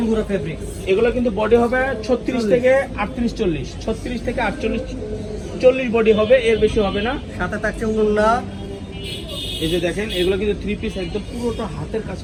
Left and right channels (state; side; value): identical; both; correlation 1.00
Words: ফেব্রিক, এগুলো কিন্তু বডি হবে 36 থেকে 38 40, 36 থেকে 48 40 বডি হবে, এর বেশি হবে না। সাথে থাকছে উন্না। এই যে দেখেন এগুলো কিন্তু 3 পিস একদম পুরোটা হাতের কাজ